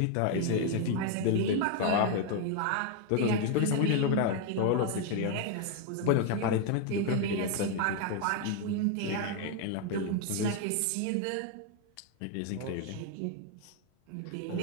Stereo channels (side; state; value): both; different; correlation 0.01